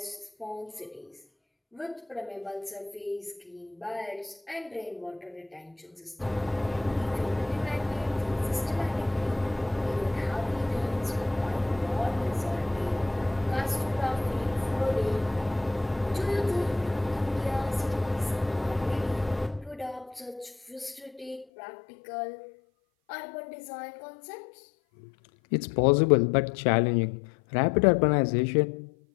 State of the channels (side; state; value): right; drops out; at 21.5 s